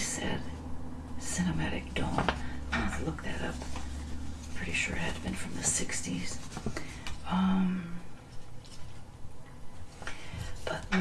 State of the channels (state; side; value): identical; both; correlation 1.00